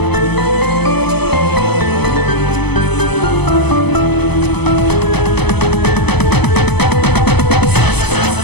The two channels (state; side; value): late; right; 0.99 ms